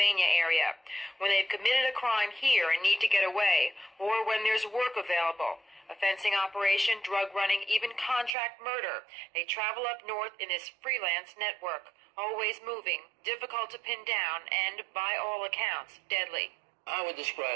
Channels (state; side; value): drops out; left; at 8.3 s